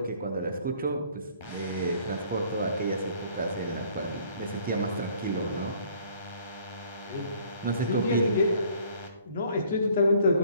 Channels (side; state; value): both; inverted; correlation -0.58